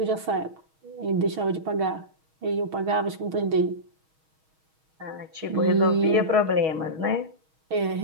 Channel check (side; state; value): left; late; 6.3 ms